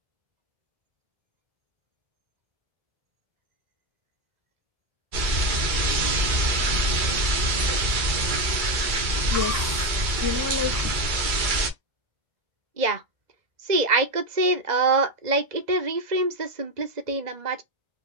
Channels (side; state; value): left; late; 2.2 ms